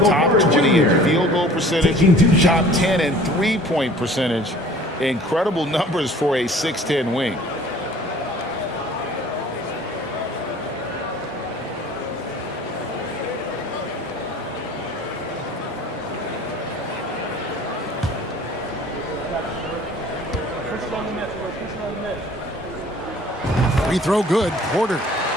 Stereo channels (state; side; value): normal; both; correlation 0.49